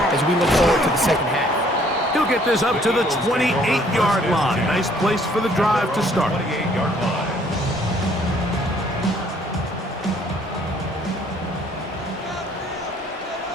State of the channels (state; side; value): normal; both; correlation 0.61